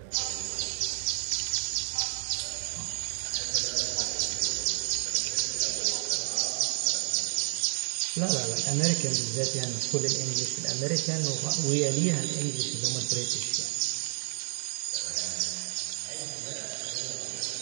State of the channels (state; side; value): silent; left; 55 dB below the other